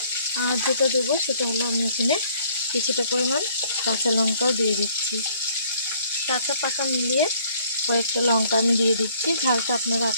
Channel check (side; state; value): both; inverted; correlation -0.61